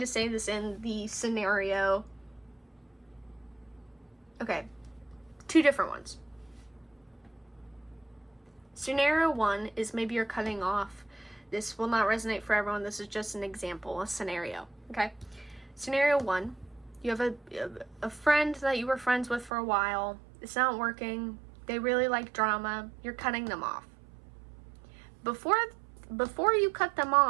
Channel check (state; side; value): drops out; left; at 19.5 s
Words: to say this in the scenario. Okay, 2 different ones. Scenario 1 is maybe you're cutting off. This will not resonate for everyone. This is just an example, a scenario. Okay. Scenario 1, you have a friend that you were friends with for a while. It's not working. They really like drama. You're cutting them off. Before you cut them